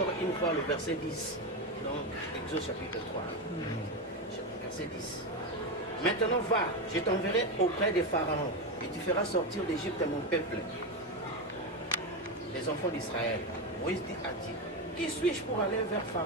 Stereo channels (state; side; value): normal; both; correlation 0.13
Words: une fois le verset 10, donc Exode chapitre 3, verset 10. Maintenant va, je t'enverrai auprès des pharaons, et tu feras sortir d'Égypte mon peuple, les enfants d'Israël. Moïse dit à Dieu, qui suis-je pour aller vers